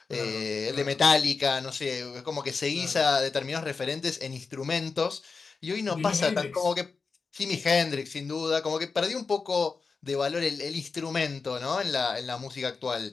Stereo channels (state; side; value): quieter; right; 4.7 dB